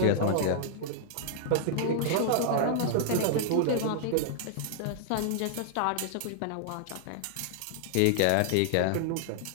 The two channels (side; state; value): both; different; correlation -0.01